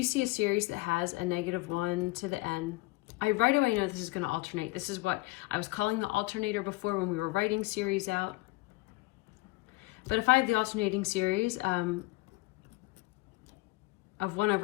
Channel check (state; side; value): quieter; right; 21.4 dB